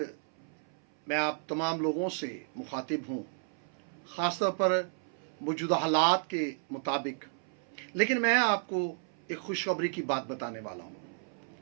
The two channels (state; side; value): silent; left; 56 dB below the other